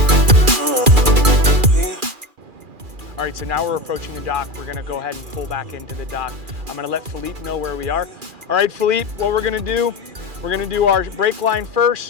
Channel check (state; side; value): late; left; 2.4 ms